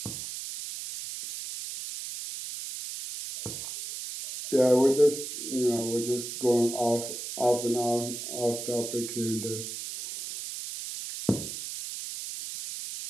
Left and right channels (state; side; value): noise; right; hiss, 7 dB below the sound